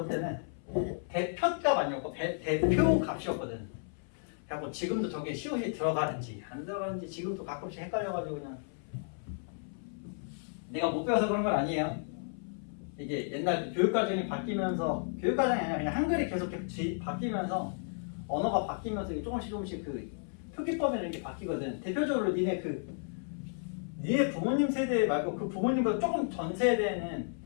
대표값 아니었고 대표값이었거든. 그래갖고 지금도 저게 시옷이 들어가는지 안 들어가는지 지금도 가끔씩 헷갈려가지고 그냥 내가 못 배워서 그런 건 아니에요. 이게 옛날 교육과정이 바뀌면서 교육과정이 아니라 그냥 한글이 계속 바뀌면서 언어가 바뀌면서 이게 조금씩 그 표기법이라는 게 바뀌거든. 대표적으로 니네 부모님 세대 말고 그 부모님보다 조금 전 세대는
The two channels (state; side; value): silent; right; 56 dB below the other